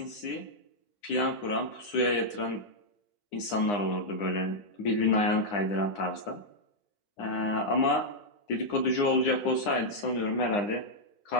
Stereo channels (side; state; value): right; late; 9.8 ms